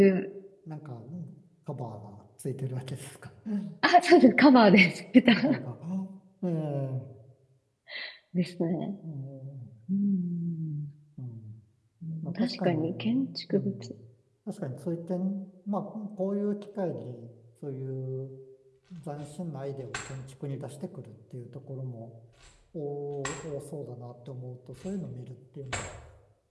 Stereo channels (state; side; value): identical; both; correlation 1.00